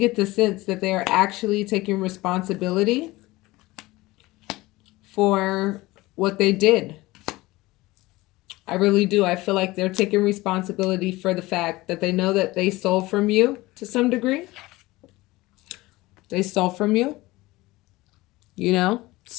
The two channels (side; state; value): right; quieter; 19.9 dB